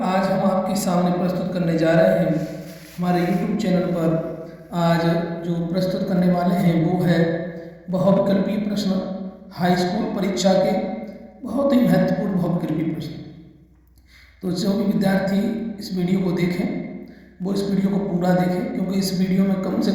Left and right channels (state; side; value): identical; both; correlation 1.00